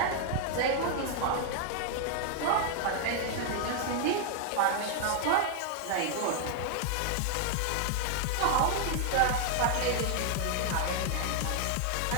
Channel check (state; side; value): different; both; correlation 0.00